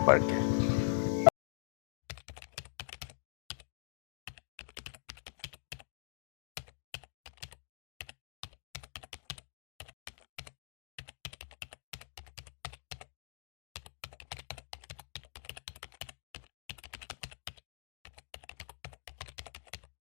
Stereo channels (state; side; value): silent; right; digital silence